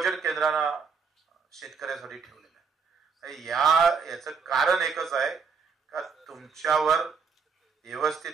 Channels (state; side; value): quieter; left; 5.6 dB